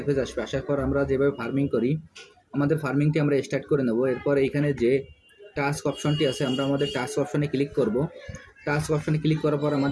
আসবে। আসার পর আমরা যেভাবে ফার্মিং করি, আমাদের ফার্মিংটি আমরা স্টার্ট করে নেব। এরপর এইখানে যে টাস্ক অপশনটি আছে, আমরা আমাদের টাস্ক অপশনে ক্লিক করব। টাস্ক অপশনে ক্লিক করার পর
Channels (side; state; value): both; identical; correlation 1.00